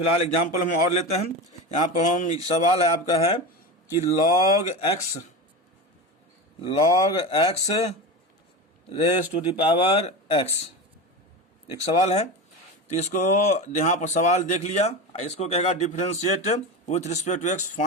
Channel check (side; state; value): both; normal; correlation 0.24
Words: एग्जाम्पल हम और लेते हैं। यहाँ पर हम सवाल है आपका है कि log x raise to the power x, एक सवाल है। तो इसको यहाँ पर सवाल देख लिया, इसको कहेगा differentiate with respect to x,